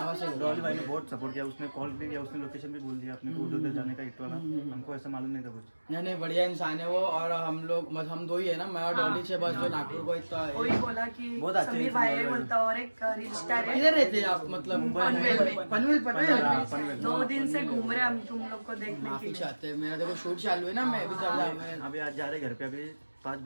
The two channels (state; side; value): inverted; both; correlation -1.00